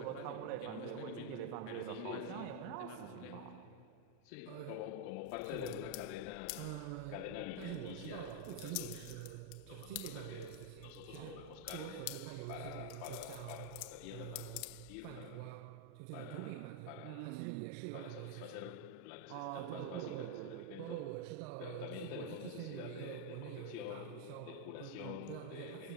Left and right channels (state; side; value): different; both; correlation 0.00